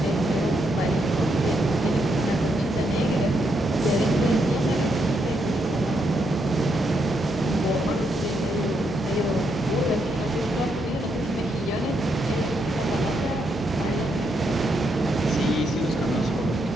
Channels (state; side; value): normal; both; correlation 0.79